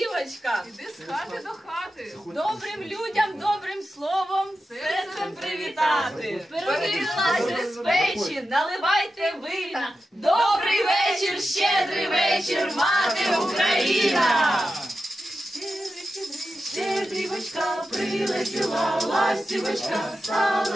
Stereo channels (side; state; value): both; normal; correlation 0.91